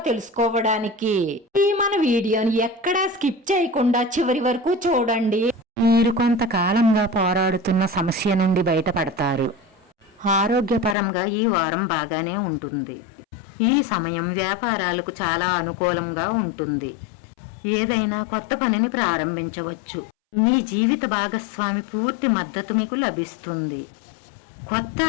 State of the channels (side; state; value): right; drops out; at 11.0 s